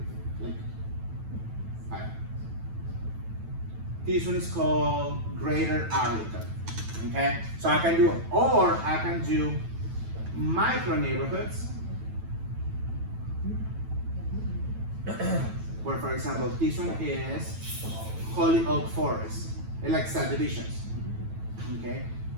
this one is called Greater Arlington. Okay? So I can do micro neighborhoods. Where, for example, this one is Holy Oak Forest. It's like subdivisions. Okay.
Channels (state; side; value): late; left; 9.1 ms